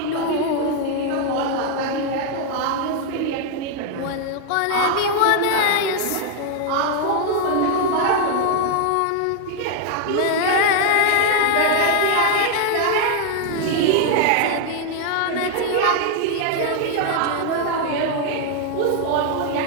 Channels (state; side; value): different; both; correlation 0.00